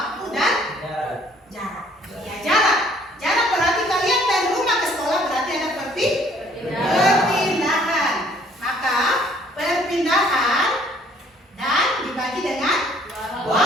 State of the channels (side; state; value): both; normal; correlation 0.60